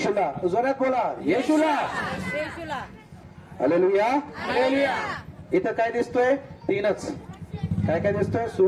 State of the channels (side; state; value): both; identical; correlation 1.00